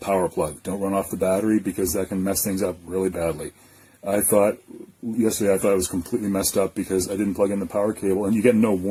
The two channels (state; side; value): identical; both; correlation 1.00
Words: plug. Don't run off the battery, because that can mess things up really badly. Yesterday I thought it was completely messed up because I didn't plug in the power cable, and you get no